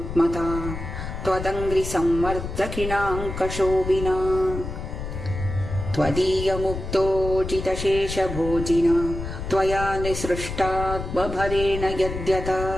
त्वदङ्घ्रिसंवर्धकिणाङ्कशोभिना त्वदीयमुक्तोजितशेषभोजिना त्वया निसृष्टात्मभरेण यद्यथा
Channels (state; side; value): noise; left; rumble, 7 dB below the sound